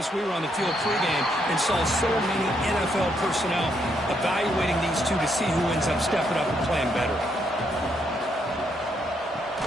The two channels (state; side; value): normal; both; correlation 0.75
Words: we were on the field pregame and saw so many NFL personnel evaluating these two to see who ends up stepping up and playing better.